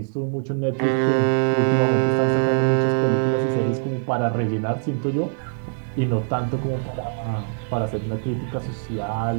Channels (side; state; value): left; silent; digital silence